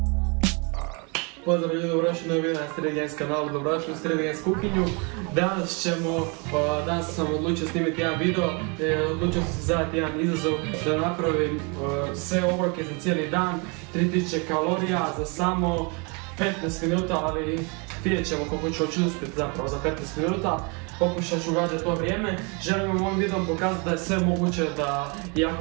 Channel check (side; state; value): left; quieter; 32.4 dB